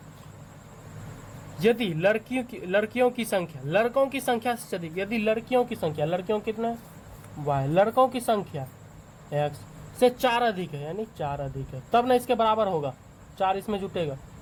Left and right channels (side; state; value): both; identical; correlation 1.00